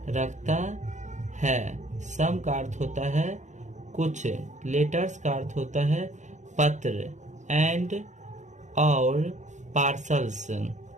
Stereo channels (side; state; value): left; late; 0.35 ms